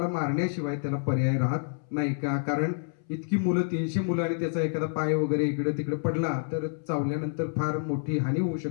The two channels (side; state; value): right; silent; 59 dB below the other